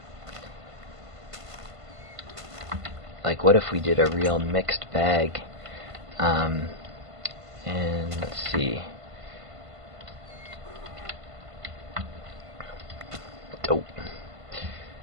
Like, what if we did a real mixed bag? And let's see. Oh.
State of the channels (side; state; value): left; late; 1.5 ms